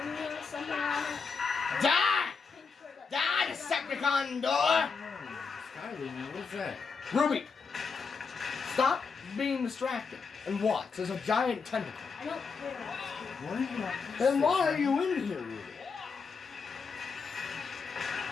blue or something on it. Die! Pink shirt that- Die, Decepticon door! Oh, Skyler, man, what's that? Ruby, stop being distracted and watch. There's a giant tentacle. I don't care. What are you on? Then why are you in here, Ruby?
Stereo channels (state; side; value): quieter; right; 5.2 dB